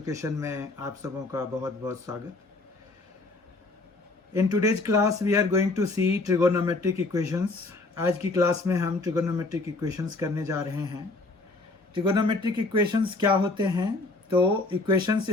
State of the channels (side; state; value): right; quieter; 3.2 dB